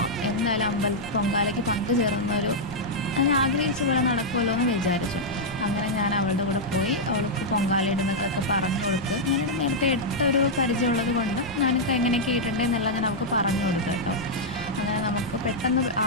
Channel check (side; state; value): left; noise; rumble, 20 dB below the sound